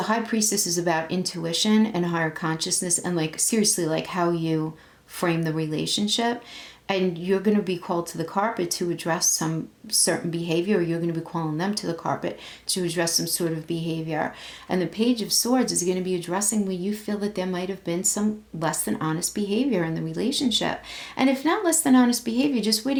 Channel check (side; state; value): both; identical; correlation 1.00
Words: High Priestess is about intuition and higher consciousness and like seriously like how you frame the relationship. And you're going to be called to the carpet to address some certain behavior, or you're going to be calling them to the carpet to address some sort of behavior. And the Page of Swords is going to be addressing where you feel that there might have been some less than honest behavior in the relationship. And if not less than honest behavior, just where